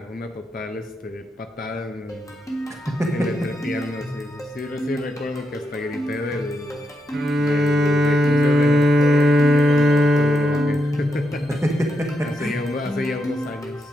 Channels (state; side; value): normal; both; correlation 0.83